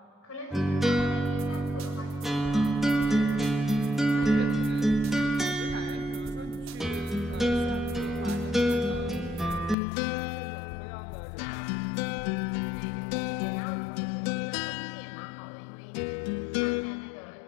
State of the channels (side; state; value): right; drops out; at 9.8 s